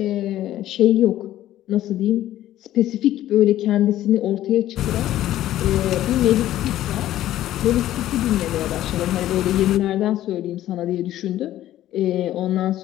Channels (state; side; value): quieter; right; 13.5 dB